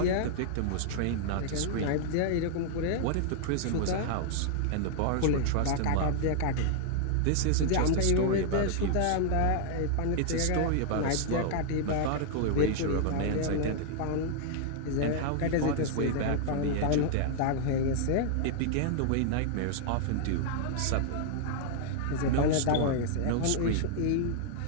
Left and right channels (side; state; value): both; different; correlation 0.00